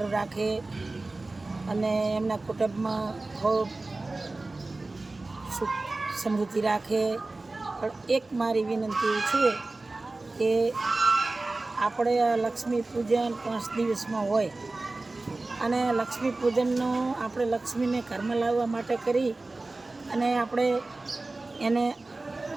રાખે અને એમના કુટુંબમાં ખૂબ સુખ સમૃદ્ધિ રાખે. પણ એક મારી વિનંતી છે કે આપણે લક્ષ્મી પૂજન 5 દિવસમાં હોય અને લક્ષ્મી પૂજનનો આપણે લક્ષ્મીને ઘરમાં લાવવા માટે કરી અને આપણે એને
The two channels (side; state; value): left; quieter; 3.2 dB